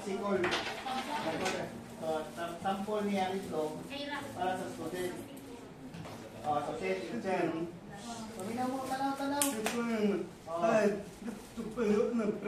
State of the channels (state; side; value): identical; both; correlation 1.00